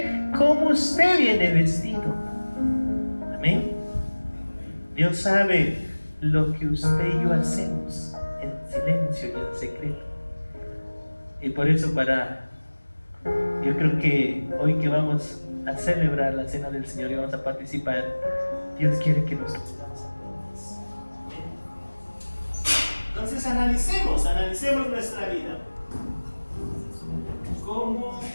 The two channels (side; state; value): both; inverted; correlation -1.00